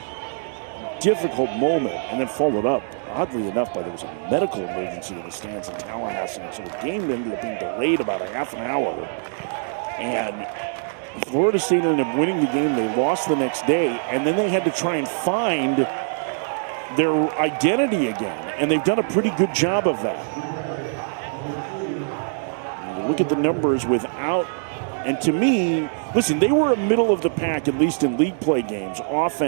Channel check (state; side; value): silent; left; 60 dB below the other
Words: difficult moment, and then followed up, oddly enough, by there was a medical emergency in the stands in Tallahassee, and so the game ended up being delayed about a half an hour, and Florida State ended up winning the game. They lost the next day, and then they had to try and find their identity again, and they've done a pretty good job of that. Look at the numbers without, and to me, listen, they were a middle of the pack, at least in league play games,